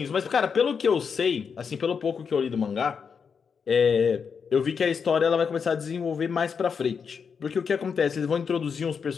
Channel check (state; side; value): quieter; right; 6.2 dB